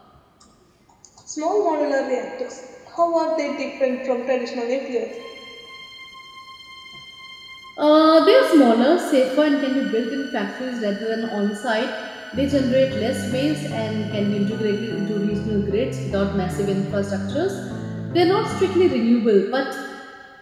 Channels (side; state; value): both; identical; correlation 1.00